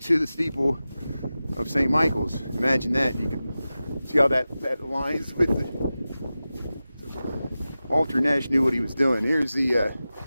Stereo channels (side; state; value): both; inverted; correlation -0.94